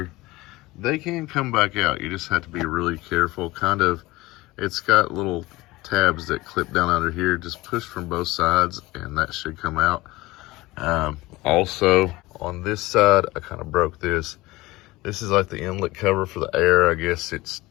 they can come back out. You just have to be really careful. It's got little tabs that clip down under here. Just push from both sides and that should come out. Also, on this side, I kind of broke this. This is like the inlet cover for the air. I guess it's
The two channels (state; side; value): quieter; right; 20.0 dB